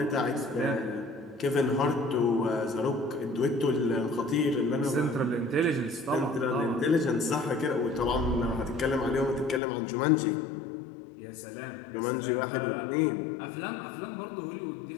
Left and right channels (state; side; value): drops out; right; at 9.6 s